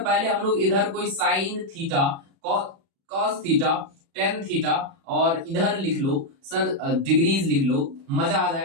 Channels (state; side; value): late; left; 36 ms